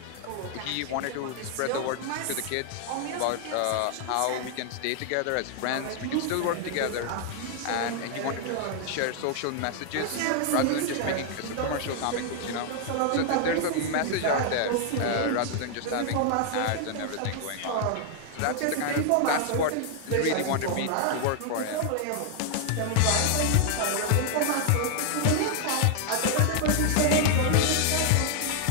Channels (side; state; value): both; different; correlation 0.00